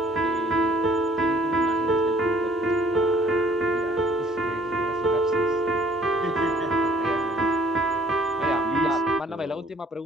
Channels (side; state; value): both; normal; correlation 0.58